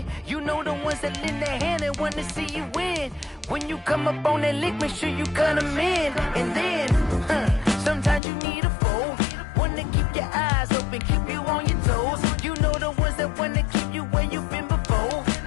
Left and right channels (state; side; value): drops out; right; at 8.2 s